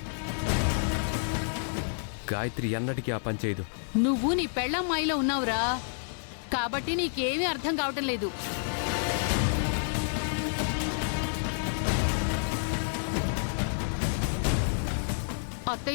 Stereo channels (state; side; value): silent; right; digital silence